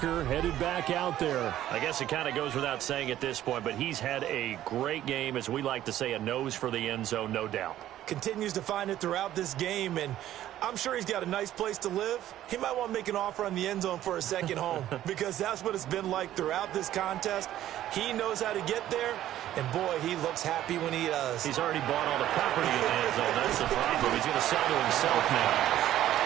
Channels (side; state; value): left; quieter; 12.8 dB